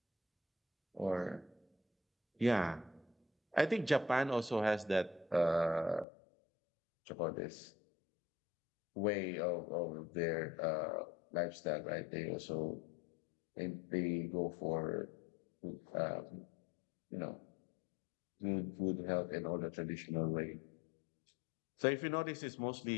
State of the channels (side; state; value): right; drops out; at 6.1 s